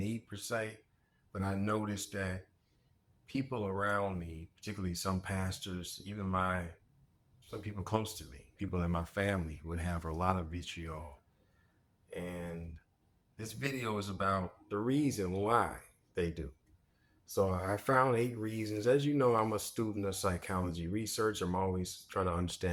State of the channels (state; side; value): identical; both; correlation 1.00